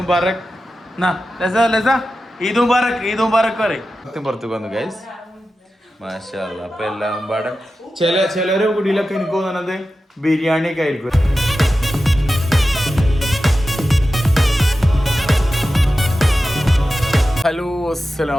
ഈദ് മുബാറക്, ഈദ് മുബാറക് പറയും. പുറത്തേക്ക് വന്നു ഗൈസ്. മാഷാ അല്ലാ. അപ്പൊ എല്ലാം പാടെ ചിലരെ കുടിയിലൊക്കെ എനിക്ക് തോന്നുന്നത് ബിരിയാണി ഒക്കെ ആയിരിക്കും. ഹലോ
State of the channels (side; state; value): both; normal; correlation 0.93